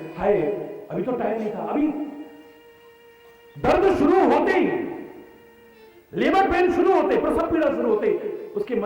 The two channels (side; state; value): both; identical; correlation 1.00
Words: हाय अभी तो टाइम नहीं था। अभी दर्द शुरू होते ही, लेबर पेन शुरू होते, प्रसव पीड़ा शुरू होते, उसके